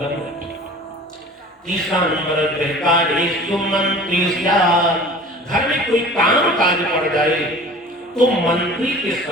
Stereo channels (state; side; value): normal; both; correlation 0.42